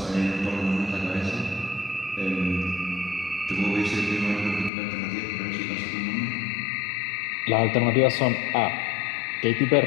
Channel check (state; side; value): drops out; right; at 4.7 s